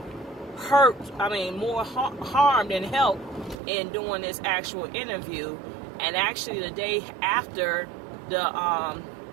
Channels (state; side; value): drops out; left; at 3.6 s